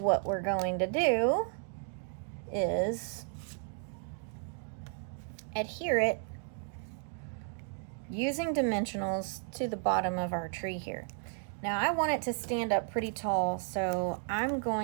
we're going to do is adhere it using dimensionals to the bottom of our tree here. Now I want it to stand up pretty tall, so I'm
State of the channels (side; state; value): left; silent; 55 dB below the other